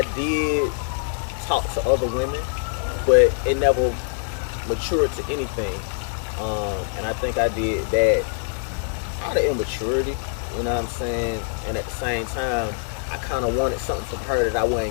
did talk to other women, but it never matured to anything. And I think I did that out of immaturity, you know what I'm saying? And at the same time, I kind of wanted something from her that I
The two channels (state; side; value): silent; right; 63 dB below the other